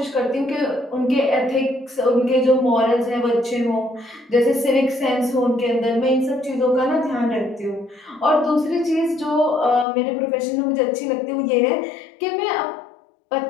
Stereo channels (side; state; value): right; drops out; at 9.9 s